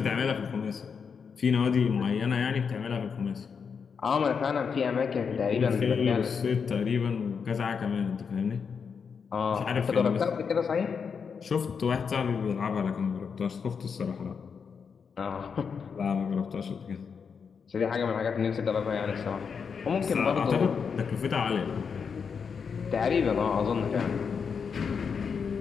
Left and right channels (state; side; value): quieter; right; 6.1 dB